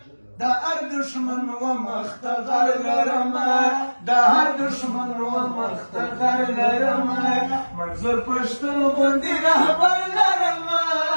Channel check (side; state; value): both; inverted; correlation -1.00